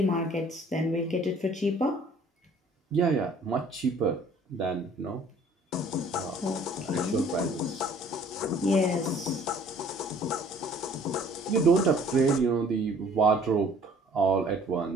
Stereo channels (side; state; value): both; normal; correlation 0.55